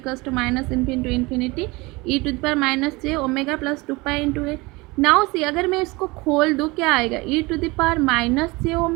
to minus infinity to infinity e to the power minus j omega plus 2 pi into a. Now see, अगर मैं इसको खोल दूँ क्या आएगा? e to the power minus j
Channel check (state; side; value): quieter; left; 23.8 dB